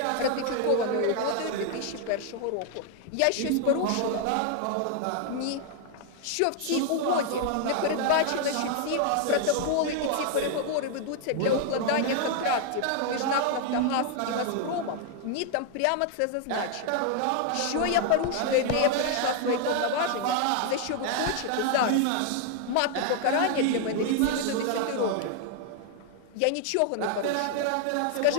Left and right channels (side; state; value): both; different; correlation 0.00